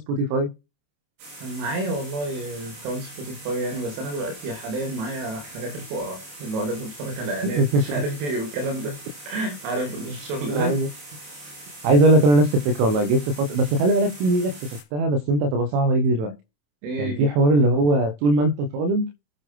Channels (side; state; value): left; late; 27 ms